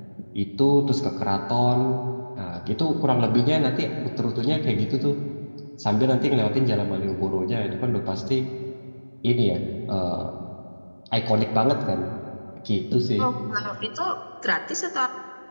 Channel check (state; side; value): inverted; both; correlation -1.00